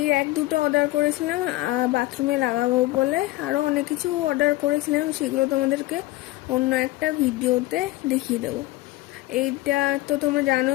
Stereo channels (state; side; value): quieter; right; 18.5 dB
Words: র্যাক দুটো অর্ডার করেছিলাম বাথরুমে লাগাবো বলে। আরও অনেক কিছু অর্ডার করেছিলাম, সেগুলো তোমাদেরকে অন্য একটা ভিডিওতে দেখিয়ে দেবো। এইটা তো তোমরা